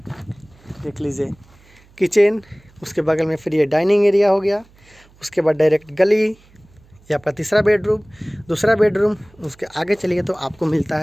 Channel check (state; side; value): noise; right; hum, 29 dB below the sound